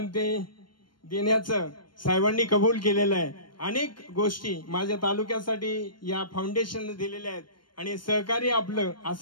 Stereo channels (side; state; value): right; late; 0.72 ms